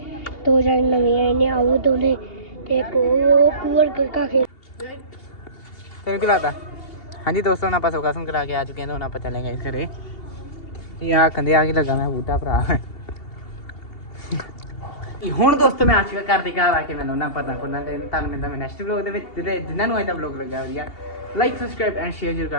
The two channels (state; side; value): late; right; 2.8 ms